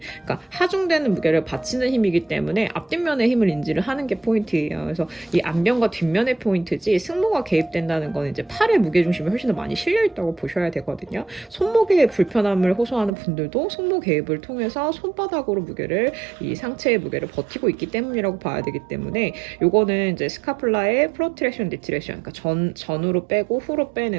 그러니까 하중되는 무게를 받치는 힘이기 때문에 앞뒷면의 힘을 인지를 하는 게 포인트예요. 그래서 이 앞면과 뒷면의 포인트지 승모가 개입된다는 건 이제 팔의 무게 중심이 훨씬 더 많이 실려 있다고 보셔야 되거든요. 손목의 불편함을 호소하는 분들도 손목 개입을 통해서 손바닥으로 이 상체의 무게를 버티고 있기 때문이라고 봐야 되기 때문에 요거는 이제 스카플라의 프로트랙션, 디트랙션, 그러니까 전으로 빼고 후로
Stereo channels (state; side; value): drops out; left; at 13.1 s